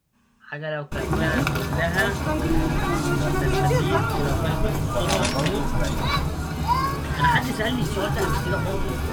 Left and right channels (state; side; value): identical; both; correlation 1.00